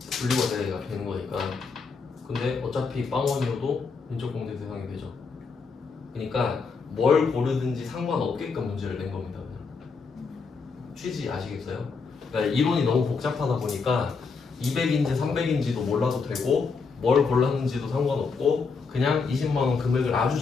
분리과세가 되는 거니까. 근데 어차피 빵원이어도 인적공제 대상이 되죠. 그러니까 뭘 고르든지 상관없게끔 문제를 낸 겁니다. 그냥. 취지 아시겠어요? 그러니까 이론이 너무 복잡하다 보니까 200인지 300인지도 몰라도 되고 뭘 골랐는지도 상관없고 그냥 20만 원 금액을 아주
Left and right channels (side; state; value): right; quieter; 4.9 dB